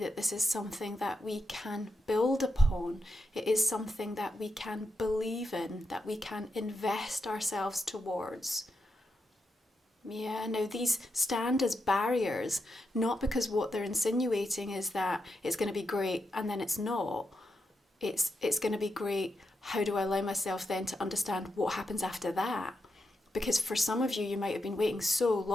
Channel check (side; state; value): both; normal; correlation 0.85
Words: this is something that we can build upon. It is something that we can believe in, that we can invest ourselves towards. Yeah, now these stand as barriers, not because what they're insinuating is that it's going to be great and then it's not. It's going to be great. How do I allow myself then to understand what happens after that? Because for some of you, you might have been waiting so